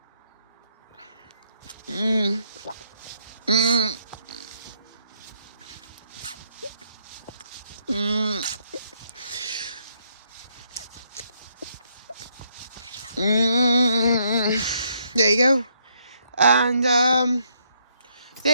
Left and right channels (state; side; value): inverted; both; correlation -0.73